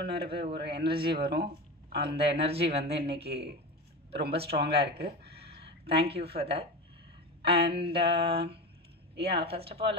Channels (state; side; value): normal; both; correlation 0.25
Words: ஒரு எனர்ஜி வரும். அந்த எனர்ஜி வந்து இன்னைக்கு ரொம்ப ஸ்ட்ராங்காக இருக்குது. Thank you for that. And first of all